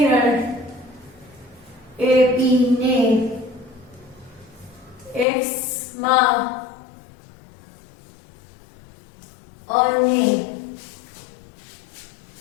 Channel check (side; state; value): right; drops out; at 5.2 s